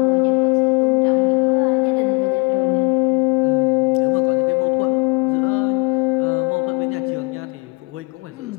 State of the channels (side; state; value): right; quieter; 29.5 dB